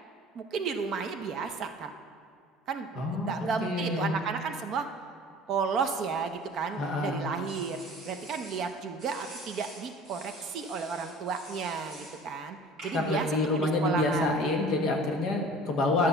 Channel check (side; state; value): both; normal; correlation 0.45